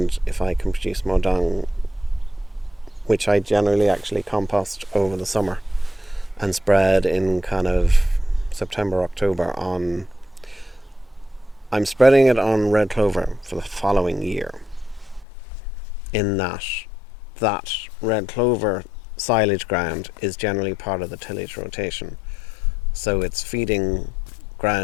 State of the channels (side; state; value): right; drops out; at 15.2 s